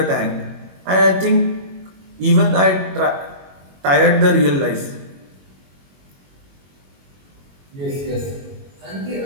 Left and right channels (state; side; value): late; left; 22 ms